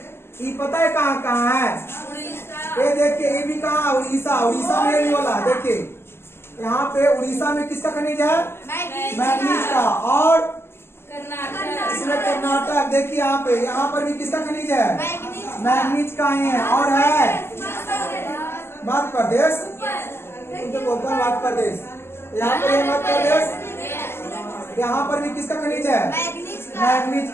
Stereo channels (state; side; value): late; right; 0.12 ms